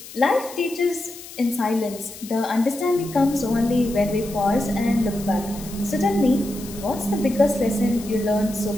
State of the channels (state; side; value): noise; left; hiss, 15 dB below the sound